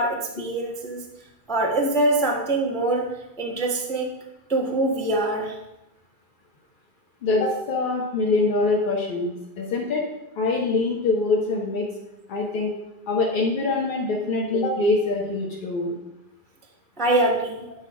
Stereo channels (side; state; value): right; late; 2.4 ms